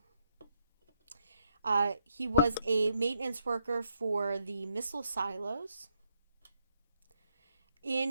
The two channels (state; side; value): inverted; both; correlation -0.76